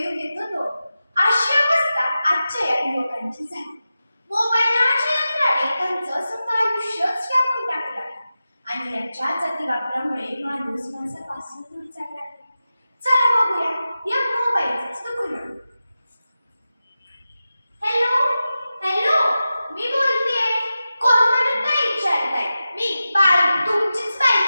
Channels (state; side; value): inverted; both; correlation -0.93